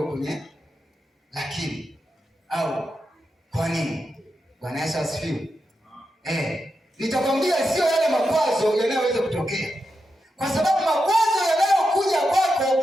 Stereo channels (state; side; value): normal; both; correlation 0.87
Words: kwenye lakini au kwa nini. Bwana Yesu asifiwe. Nitakwambia sio yale makwazo yanayoweza kutokea, kwa sababu makwazo yanayokuja